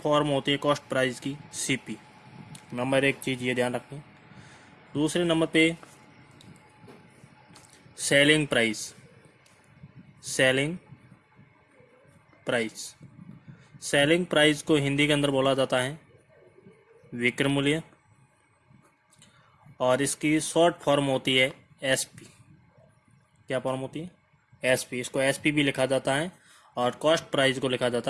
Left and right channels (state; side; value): identical; both; correlation 1.00